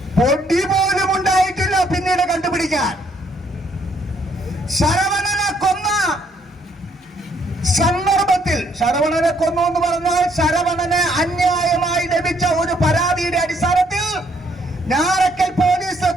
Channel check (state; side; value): normal; both; correlation 0.68